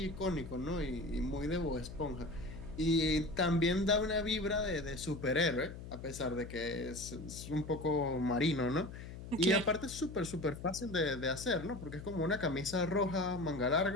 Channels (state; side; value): noise; left; hum, 11 dB below the sound